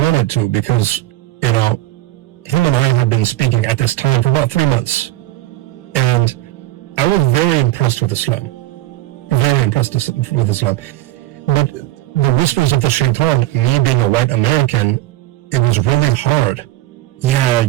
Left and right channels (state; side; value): quieter; left; 15.4 dB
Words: to because, you know, him and I had been speaking at this time for about 3 months. And I was very impressed with Islam. Very impressed with Islam. But the whispers of the shaitan, me being a white American, it was really hard. Yeah,